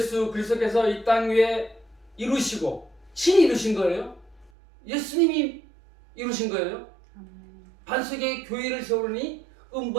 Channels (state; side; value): drops out; left; at 4.5 s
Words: 그리스도께서 이 땅 위에 이루시고 친히 이루신 거예요. 예수님이 이루신 거예요. 반석에 교회를 세우니